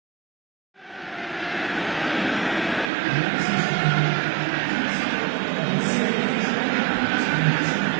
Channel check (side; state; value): left; drops out; at 2.9 s